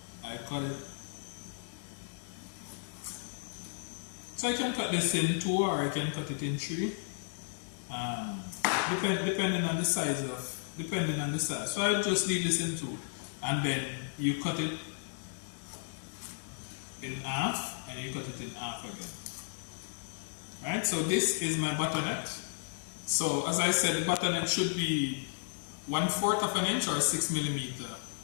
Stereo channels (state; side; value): silent; right; digital silence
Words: I cut it. So I can cut this in 2 or I can cut it in 3. Depending on the size So I just leave this in 2, and then you cut it in half, and you cut it in half again. Right? So this is my buttonette. So as I said, the buttonette should be 1/4 of an inch or 6 millimeter